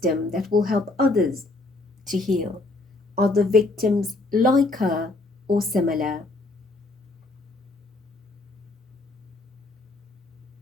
that will help others to heal, other victims like her or similar.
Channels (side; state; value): right; quieter; 3.0 dB